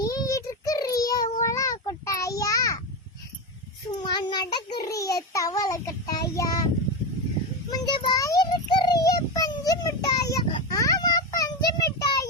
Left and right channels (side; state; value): both; normal; correlation 0.15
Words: இருக்கிறிய ஓலா கொட்டாயா, சும்மா நடக்கிறிய தவளை கட்டாயா, முஞ்ச வாய் இருக்கிறிய பஞ்சு மிட்டாயா, ஆமா பஞ்சு